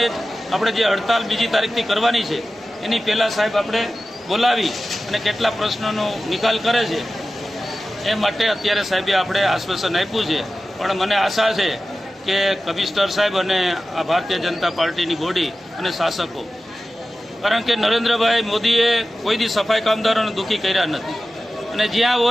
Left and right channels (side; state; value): both; normal; correlation 0.94